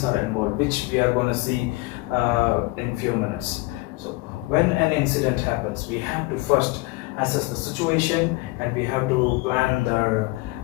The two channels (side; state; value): right; quieter; 22.2 dB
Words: are involved, which we are going to see in few minutes. So when an incident happens, we have to first assess the situation, and we have to plan the